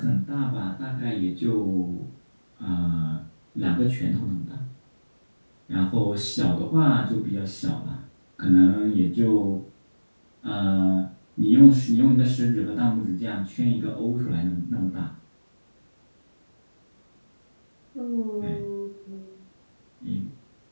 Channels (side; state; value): both; inverted; correlation -1.00